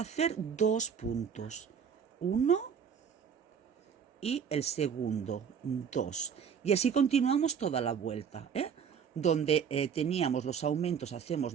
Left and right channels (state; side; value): quieter; left; 7.2 dB